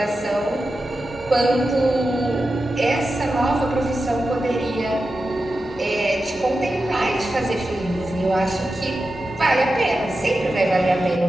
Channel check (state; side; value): normal; both; correlation 0.91